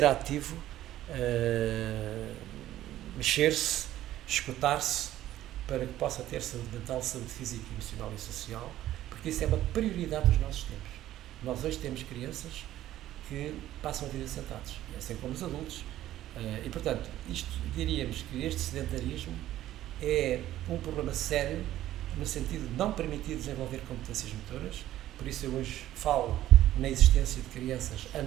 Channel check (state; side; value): quieter; left; 13.6 dB